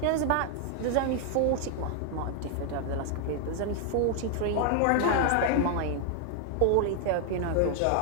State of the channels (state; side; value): different; both; correlation 0.00